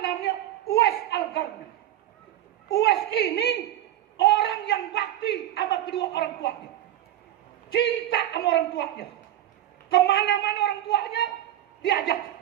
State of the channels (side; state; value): left; quieter; 12.7 dB